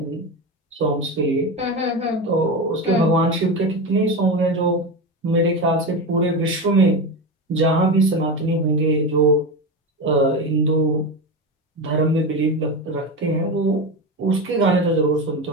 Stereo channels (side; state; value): both; normal; correlation 0.20